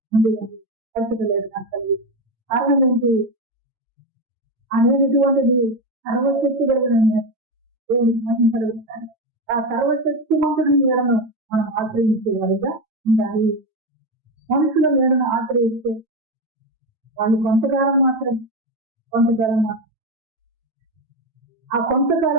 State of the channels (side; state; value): left; late; 9.0 ms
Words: ఉండదు. పరిస్థితి లేదు నాకు కలిగి. కారణం ఏంటి అనేటువంటిది సర్వశక్తి కలిగిన దేవునికి మహిమ కలుగుతారు. ఆ సర్వశక్తి మంతుడి నీడను మనం ఆశ్రయించే వారిగా ఉండాలి. మనుషుల నీడను ఆశ్రయిస్తే వాళ్ళు కొంతకాలం మాత్రం ఆ